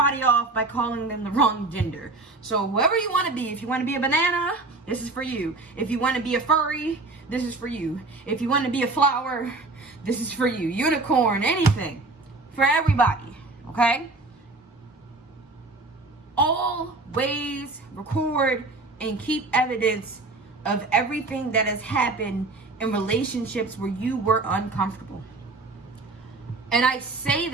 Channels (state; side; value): quieter; left; 3.3 dB